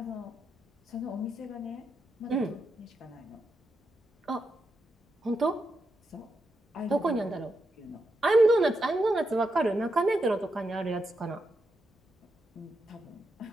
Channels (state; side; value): normal; both; correlation 0.84